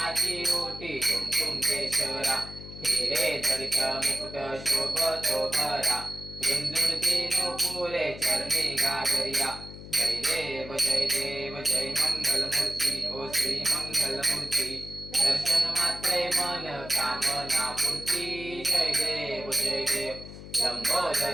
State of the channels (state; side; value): noise; left; hum, 13 dB below the sound